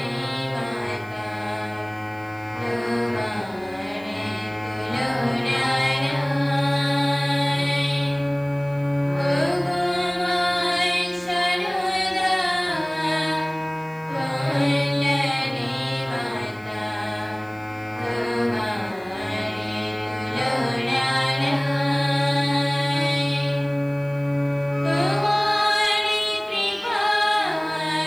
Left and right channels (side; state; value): right; noise; hiss, 29 dB below the sound